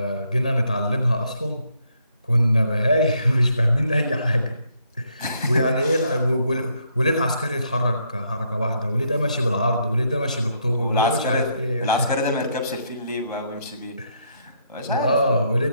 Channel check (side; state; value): both; inverted; correlation -0.73